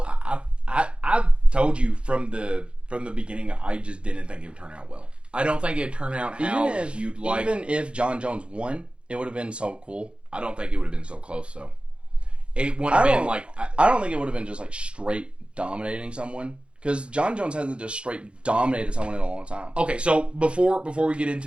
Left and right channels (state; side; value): late; left; 0.058 ms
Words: I told you from the beginning, I just didn't think it would turn out well. I don't think it'd turn out how you'd like. Even if Jon Jones won, it would have been so cool. I don't think it would have been so close, though. It wouldn't have been like... I don't think it would have been just like straight dominating someone. Because Jon Jones hasn't just straight dominated someone in a long time. Okay, so before we get